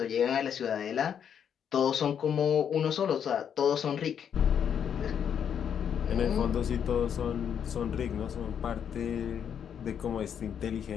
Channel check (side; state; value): right; quieter; 8.2 dB